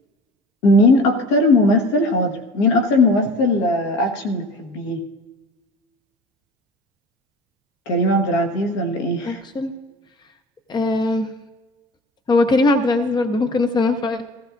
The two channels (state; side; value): normal; both; correlation 0.41